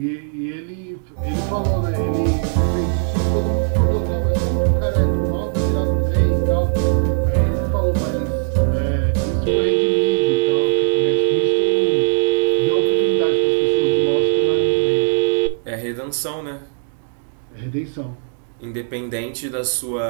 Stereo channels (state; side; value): silent; left; digital silence